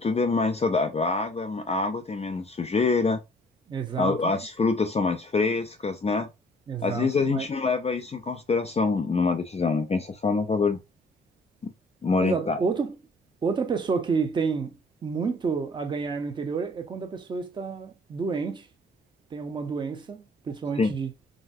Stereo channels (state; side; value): normal; both; correlation 0.57